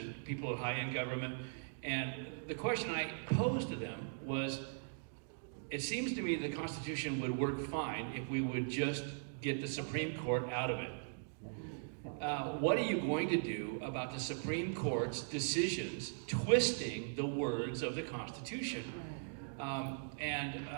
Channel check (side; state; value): left; silent; digital silence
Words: people high in government. And the question I posed to them was, it seems to me the Constitution would work fine if we would just get the Supreme Court out of it. What are you going to do about the Supreme Court's decisions twisting the words of the Constitution? And